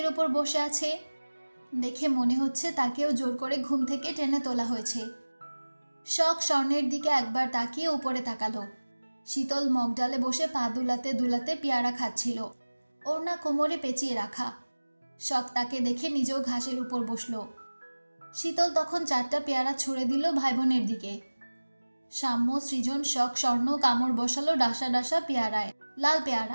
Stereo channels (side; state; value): both; inverted; correlation -1.00